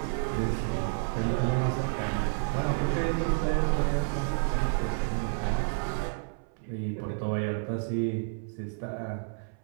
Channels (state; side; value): silent; left; 58 dB below the other